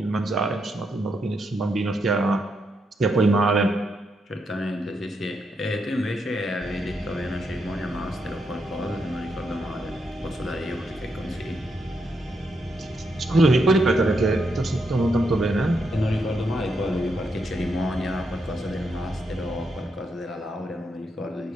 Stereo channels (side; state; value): both; normal; correlation 0.80